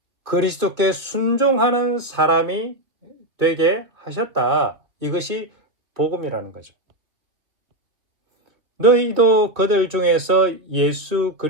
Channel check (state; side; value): late; left; 2.7 ms